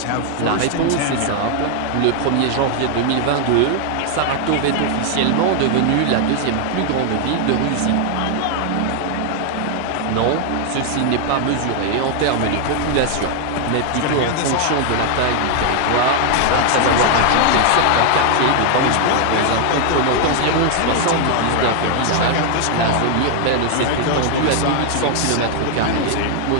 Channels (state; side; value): different; both; correlation 0.00